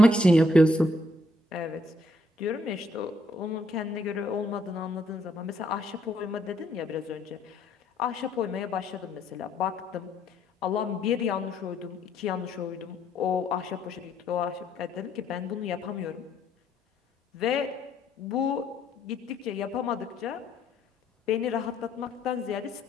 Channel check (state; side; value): normal; both; correlation 0.70